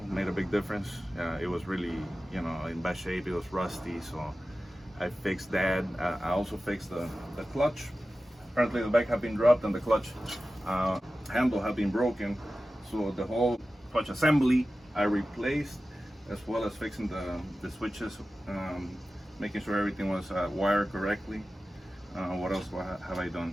Made a big difference. It was really, in bad shape. It was rusty, so I fixed that. I also fixed the clutch. Apparently the bike had been dropped and the clutch handle had been broken. So the whole clutch assembly I replaced, as well as fixing the switches, making sure everything was wired correctly. What else have I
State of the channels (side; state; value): both; normal; correlation 0.95